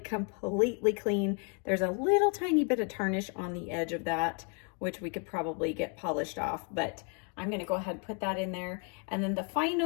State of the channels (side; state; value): right; quieter; 38.5 dB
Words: completely clean. There's a little tiny bit of tarnish on the edge of that, which we could probably get polished off, but I'm gonna go ahead and put that in there. And then the